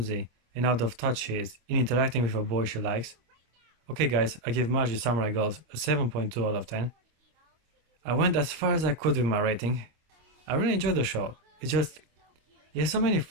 and out of touch she is in interacting with a boy she likes. Okay guys, I give Maji Samurai Girls a 7.2 out of 10. I went as far as I could with my rating. I really enjoyed the show. It's just, it has so many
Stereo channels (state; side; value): late; left; 26 ms